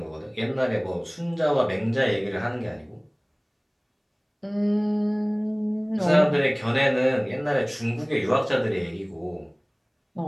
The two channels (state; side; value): identical; both; correlation 1.00